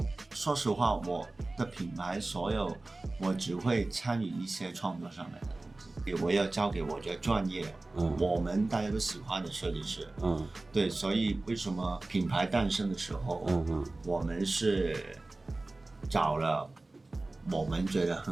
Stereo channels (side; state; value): left; quieter; 3.0 dB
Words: 说实话，我的品牌所有我只会参与一些创作上面的东西，我要交给我觉得专业，我们大家都喜欢的设计师，对，所以为什么品牌诞生的时候，我们是找了我们觉得